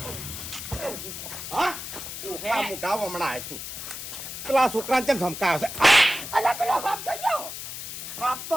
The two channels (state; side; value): noise; left; hiss, 8 dB below the sound